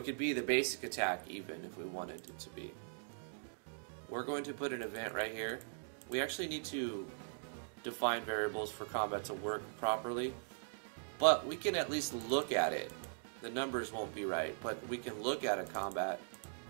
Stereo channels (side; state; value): left; silent; digital silence